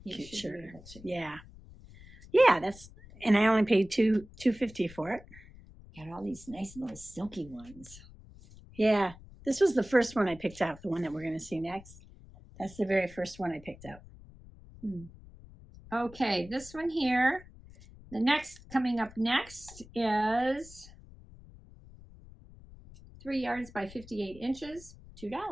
Cute shirt. Yeah. Yeah, and I only paid $2.50 for it. Got all these nice little silky ones. Yeah. This was the first one I picked out, the one that we're going to see next. That's the very first one I picked out. Okay, this one here. The next, coming up next is 3 yards by 58 inches, $2.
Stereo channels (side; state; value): left; noise; rumble, 20 dB below the sound